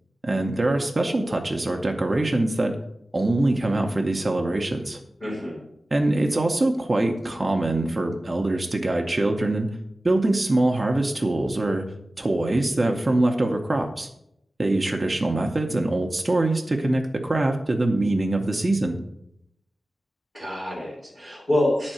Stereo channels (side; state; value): both; normal; correlation 0.96